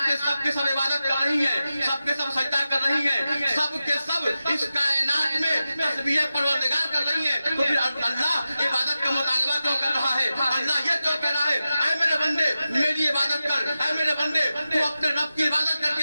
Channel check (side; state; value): both; inverted; correlation -0.93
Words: میں سب کے سب عبادت کر رہی ہیں، سب کے سب سجدہ کر رہی ہیں، سب کے سب اس کائنات میں تسبیح پروردگار کر رہی ہیں، تو پھر اللہ عبادت کا مطالبہ کیوں کر رہا ہے؟ اللہ یہ کیوں کہہ رہا ہے اے میرے بندے میری عبادت کر، اے میرے بندے تو اپنے رب کی عبادت کر